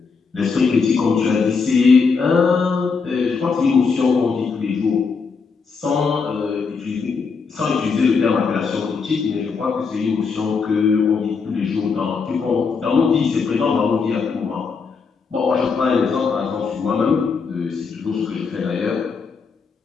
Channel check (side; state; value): right; quieter; 5.1 dB